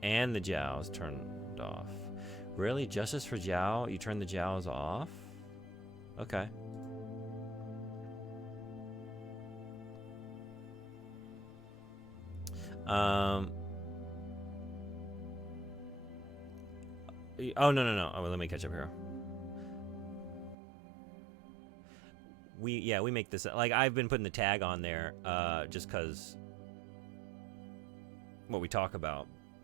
and the Jiaos turned off. Really? Justice for Jiao? You turn the Jiaos off? Okay. Oh, no. Oh, let me catch up here. We make this, like, I've been putting the tag on there just because what we talk about,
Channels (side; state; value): left; drops out; at 20.6 s